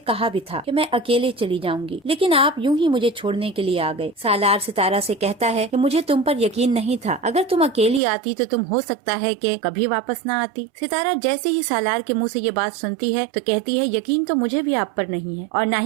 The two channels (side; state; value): left; drops out; at 8.0 s